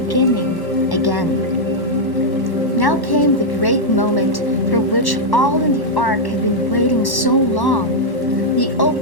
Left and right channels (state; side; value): late; right; 1.1 ms